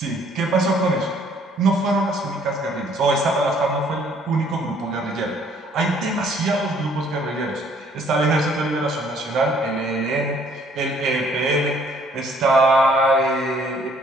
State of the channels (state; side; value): normal; both; correlation 0.61